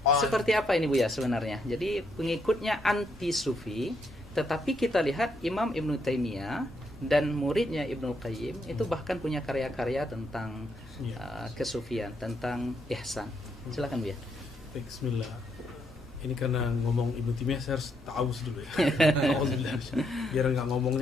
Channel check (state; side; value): normal; both; correlation 0.76